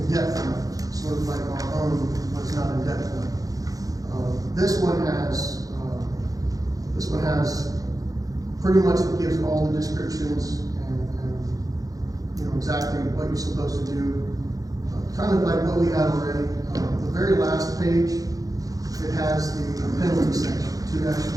depth enough, sort of like our own was not in depth enough. This one has pretty much, it gives all the descriptions and you know, exactly what you're supposed to do. Kind of like what we had already. The very last page, it has the penalty section,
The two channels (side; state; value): left; late; 0.17 ms